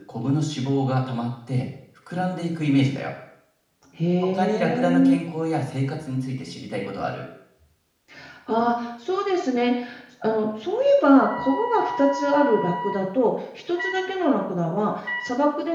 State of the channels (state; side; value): identical; both; correlation 1.00